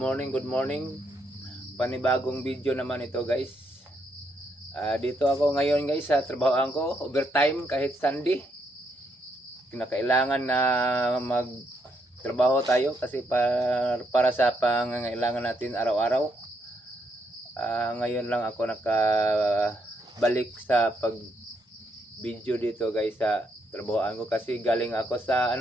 good morning. Panibagong video naman ito guys. Dito ako ngayon guys sa trabahoan ko, overtime kahit Sunday. Kinakailangan na magtrabaho tayo kasi para sa pangangailangan natin araw-araw. Ngayon lang ako nakabalik sa pag video dito guys sa trabahoan ko kasi galing ako sa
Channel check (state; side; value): normal; both; correlation 0.76